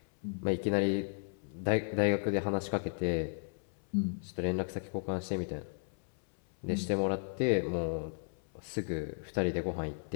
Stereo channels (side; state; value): right; silent; 55 dB below the other